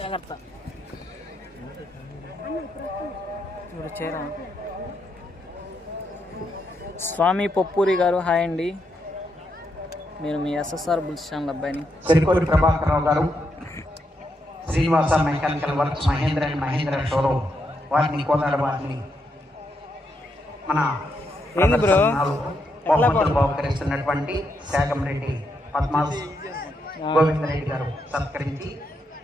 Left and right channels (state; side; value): normal; both; correlation 0.80